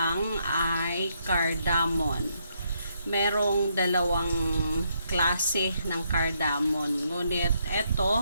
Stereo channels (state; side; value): inverted; both; correlation -0.76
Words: ay cardamom. Merong dalawang klase ng cardamom. Ngunit